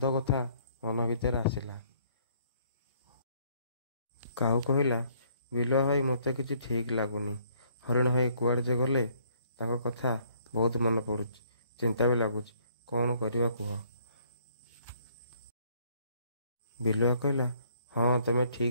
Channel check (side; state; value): both; inverted; correlation -0.64